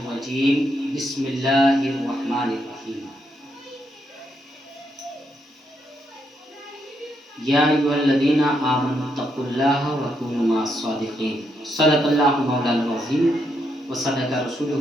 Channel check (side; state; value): both; normal; correlation 0.79